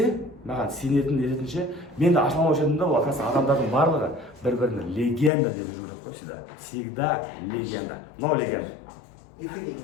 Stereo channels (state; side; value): drops out; right; at 5.3 s